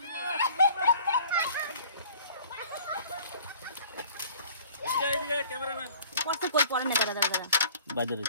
এই ক্যামেরাম্যান কষ্ট কই পড়ে না দাদা দাদা বাজারে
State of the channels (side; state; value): both; inverted; correlation -0.51